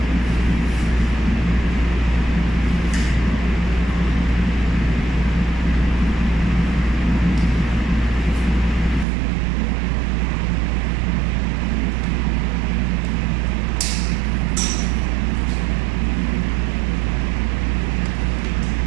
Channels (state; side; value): drops out; left; at 9.1 s